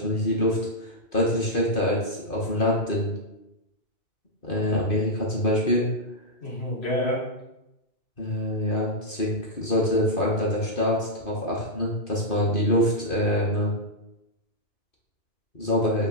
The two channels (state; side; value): late; right; 2.5 ms